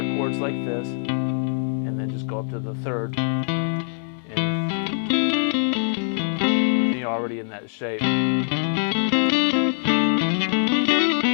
chords like this and then just go up to the 3rd, and you're already in that shape.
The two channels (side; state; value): right; silent; digital silence